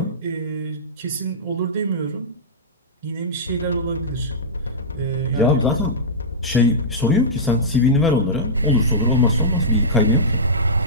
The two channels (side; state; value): both; normal; correlation -0.15